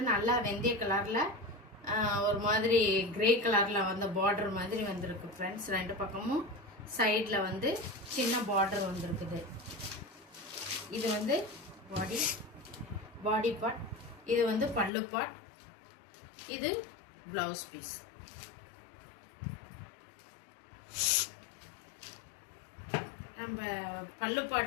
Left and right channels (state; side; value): drops out; right; at 14.9 s